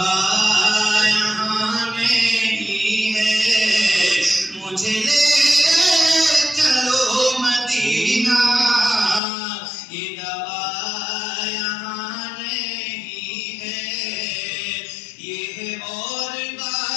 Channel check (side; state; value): right; drops out; at 9.2 s